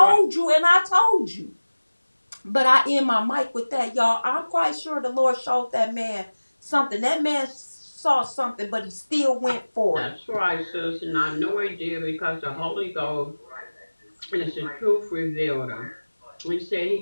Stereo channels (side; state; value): both; inverted; correlation -1.00